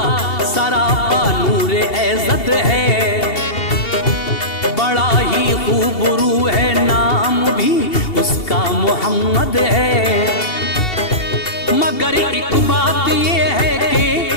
सरापा नूर एज़त है, बड़ा ही खूबरू है नाम भी उसका मोहम्मद है। मगर एक बात ये है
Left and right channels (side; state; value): right; late; 2.7 ms